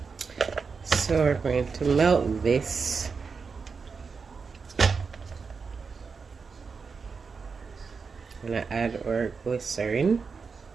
So we're going to melt this. I'm gonna add our glycerin.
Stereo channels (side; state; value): left; quieter; 5.2 dB